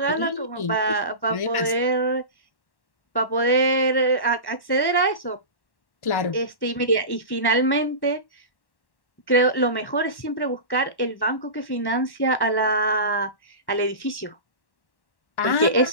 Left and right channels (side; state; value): right; late; 1.1 ms